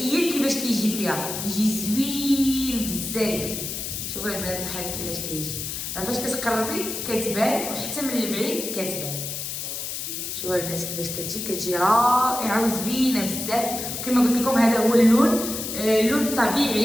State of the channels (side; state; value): left; noise; hiss, 5 dB below the sound